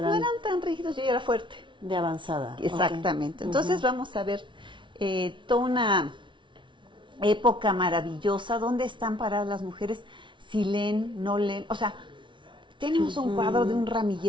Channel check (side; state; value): left; late; 0.24 ms